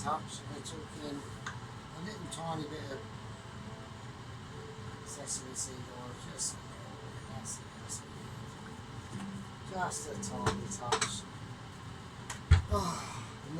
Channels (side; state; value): both; identical; correlation 1.00